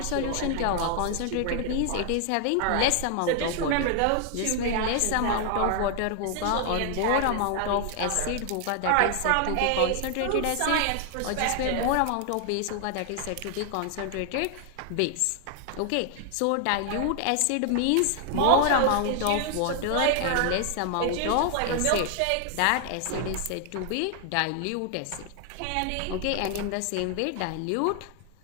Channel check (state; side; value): different; both; correlation 0.00